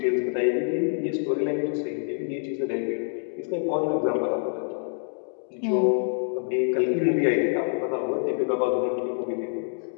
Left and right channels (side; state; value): right; silent; digital silence